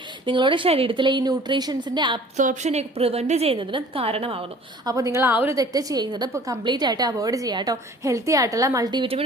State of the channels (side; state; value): both; normal; correlation 0.49